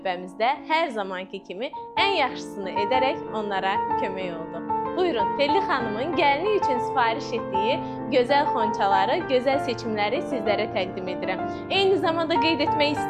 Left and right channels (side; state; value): both; identical; correlation 1.00